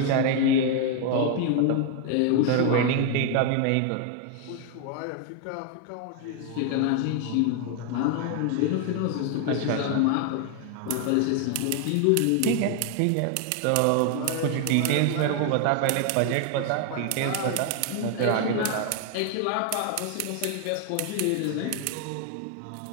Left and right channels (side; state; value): both; different; correlation 0.00